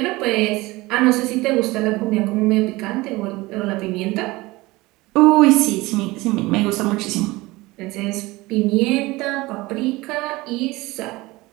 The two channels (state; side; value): quieter; left; 20.9 dB